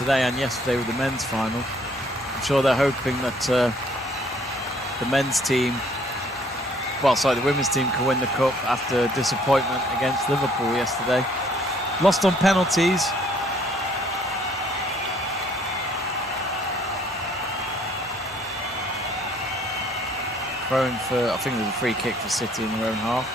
and yesterday with the men's final, I'm sure they're hoping that the men's team, well, sorry, the women's team can win the cup after disappointment against Liverpool yesterday. Lost on penalties. throwing for, I think there's a free kick for City in their own half.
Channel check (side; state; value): both; normal; correlation 0.61